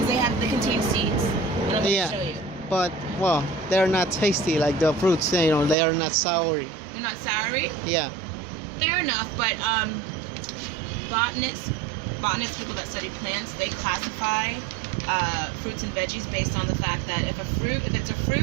they contain seeds, and I'm going to Yeah. show you. but well, they're not tasty like the fruits. You know, they are not soury. They're not soury. Yeah. Fair enough, but botanists, people that study plants, they classify fruits and veggies based on the fact that if it's a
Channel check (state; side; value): drops out; left; at 5.8 s